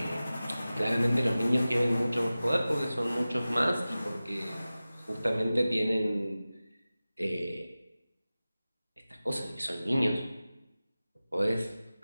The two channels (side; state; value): both; inverted; correlation -0.96